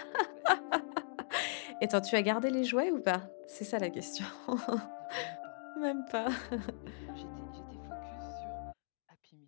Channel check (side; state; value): right; silent; digital silence